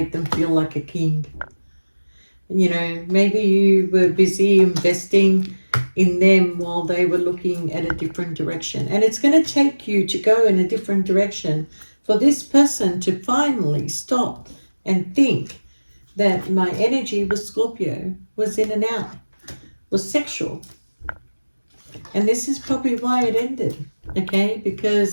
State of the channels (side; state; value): both; inverted; correlation -1.00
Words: them feel like a king. You know, maybe you were busy investing in them while they were looking at a different direction. And it's going to take you to go in a different direction for this person to finally stop and think that my energy with Scorpio was in and out, was sexual. And this is probably why it ended, okay?